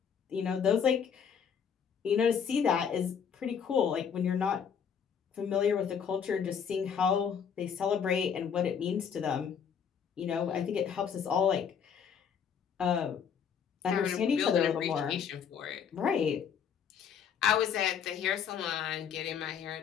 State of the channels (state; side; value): quieter; right; 7.4 dB